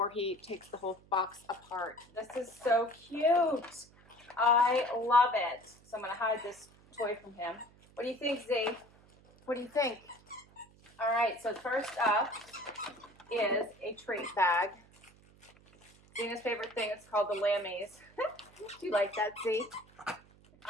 he takes the whole box apart. This is so cute. I love it. So I'm gonna hide this toy from him. What do you think, Z? What do you think? All right, so first up is a treat bag. Xena's favorite thing is called the Lammies. Do you like that, Z?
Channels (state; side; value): noise; right; hum, 26 dB below the sound